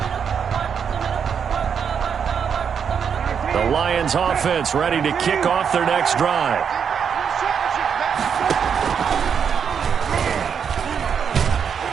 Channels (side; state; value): left; quieter; 7.2 dB